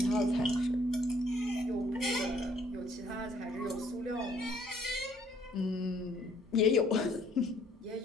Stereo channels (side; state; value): both; normal; correlation 0.63